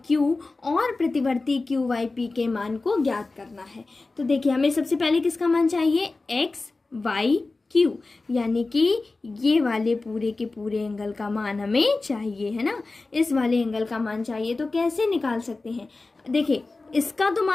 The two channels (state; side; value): quieter; right; 3.5 dB